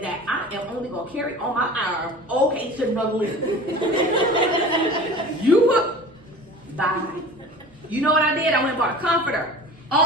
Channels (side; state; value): both; normal; correlation 0.39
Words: that I am only going to carry on my arm. Okay, to another list. Bye. You know what I did? I went and bought a comforter